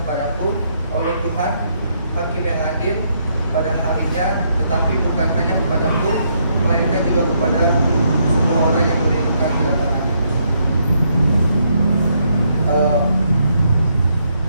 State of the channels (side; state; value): both; inverted; correlation -0.74